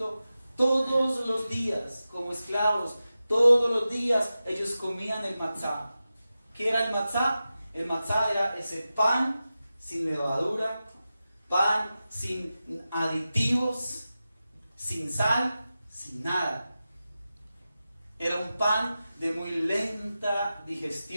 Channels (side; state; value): both; inverted; correlation -0.93